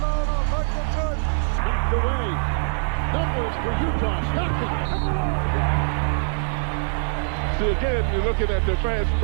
Again, you're looking at the fast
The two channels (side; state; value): left; silent; 63 dB below the other